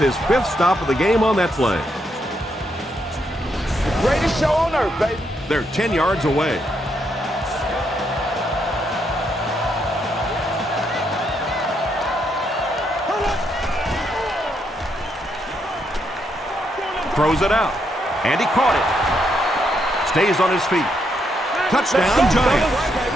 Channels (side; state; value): both; normal; correlation 0.77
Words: 5th stop of the game on that play. The greatest show on earth, baby. They're 10 yards away. Throws it out, and he caught it. Stays on his feet. Touchdown,